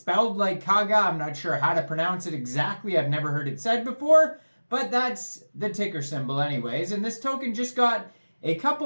like Caga. I'm not sure how to pronounce it exactly. I've never heard it said before, but that's the ticker symbol anyways. And this token just got a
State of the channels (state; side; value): inverted; both; correlation -1.00